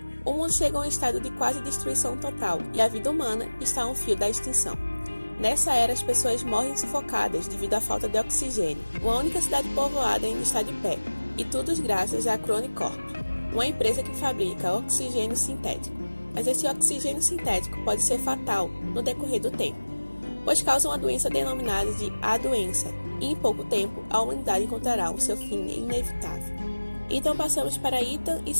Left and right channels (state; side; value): inverted; both; correlation -1.00